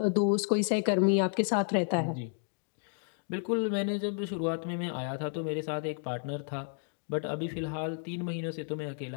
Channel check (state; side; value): silent; right; 57 dB below the other